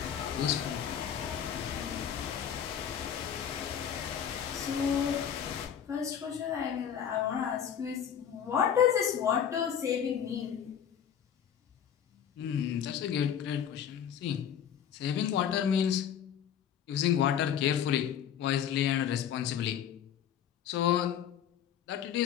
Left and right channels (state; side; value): quieter; right; 8.9 dB